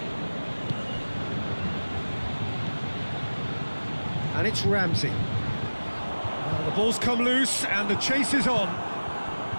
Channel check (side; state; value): both; inverted; correlation -1.00